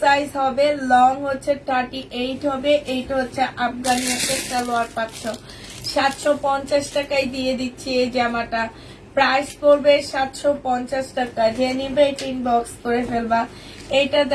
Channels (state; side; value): identical; both; correlation 1.00